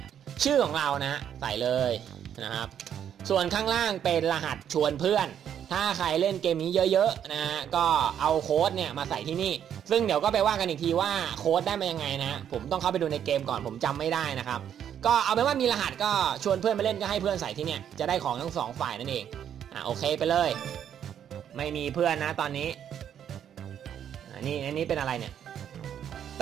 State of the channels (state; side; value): quieter; left; 9.3 dB